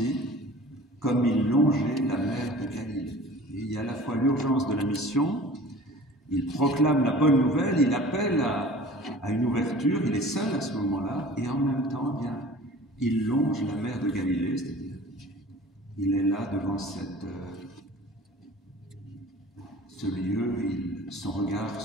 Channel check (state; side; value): normal; both; correlation 0.44